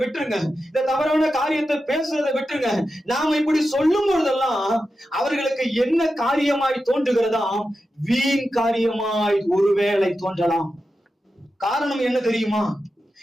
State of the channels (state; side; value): normal; both; correlation 0.90